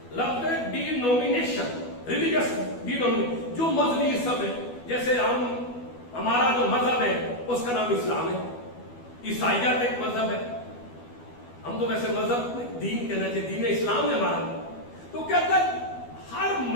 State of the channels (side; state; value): right; late; 12 ms